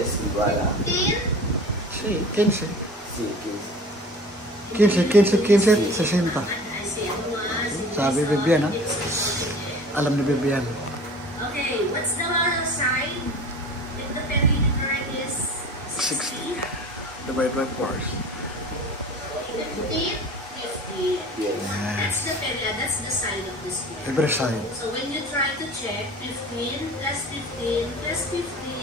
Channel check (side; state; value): both; normal; correlation 0.41